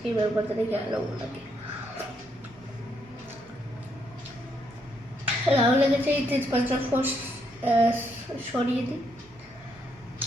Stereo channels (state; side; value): normal; both; correlation 0.75